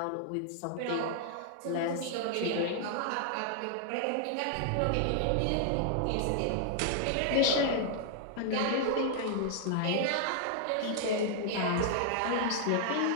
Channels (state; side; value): different; both; correlation -0.01